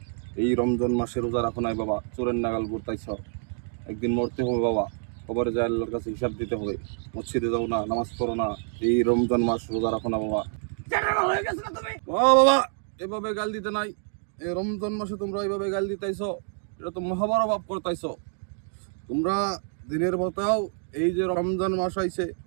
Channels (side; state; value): left; silent; 60 dB below the other